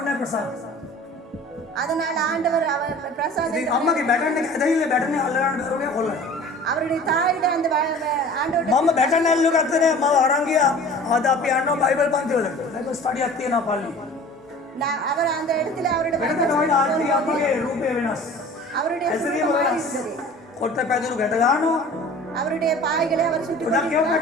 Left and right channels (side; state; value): both; normal; correlation 0.43